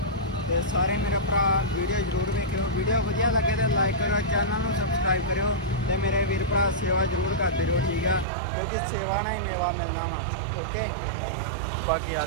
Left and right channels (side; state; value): left; drops out; at 8.2 s